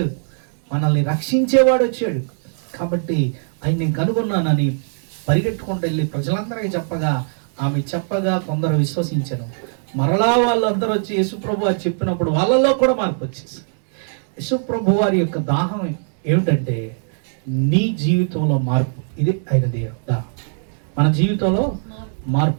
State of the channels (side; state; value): left; silent; digital silence